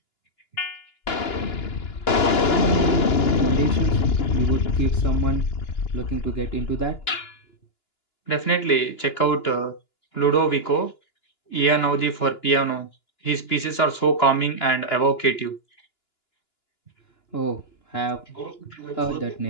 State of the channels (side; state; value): right; late; 2.9 ms